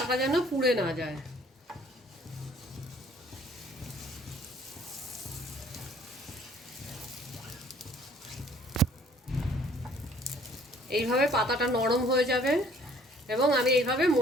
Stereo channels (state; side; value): normal; both; correlation 0.57